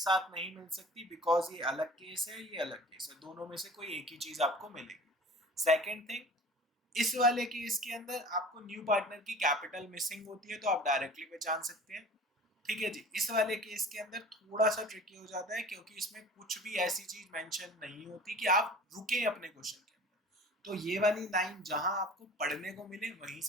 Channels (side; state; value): both; normal; correlation 0.43